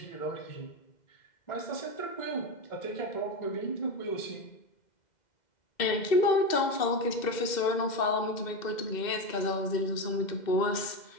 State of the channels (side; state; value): right; late; 2.1 ms